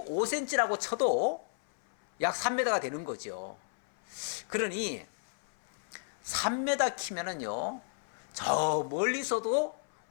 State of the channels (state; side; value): silent; right; 56 dB below the other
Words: 쳐도 약 3m가 되는 거죠. 그러니 3m 키면은요, 저 멀리서도